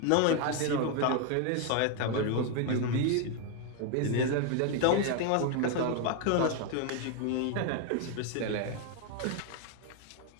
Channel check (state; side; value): different; both; correlation 0.01